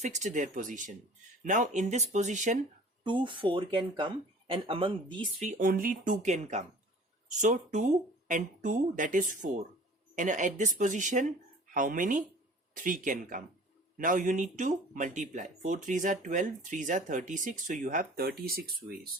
their position. Now in this position 2 4 can come, and among these 3 only 2 can come. So 2 and 2, that is 4, and at this position how many? 3 can come. Now you need to multiply. 4 3s are 12, 3s are 36, so you have 36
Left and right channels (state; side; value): normal; both; correlation 0.46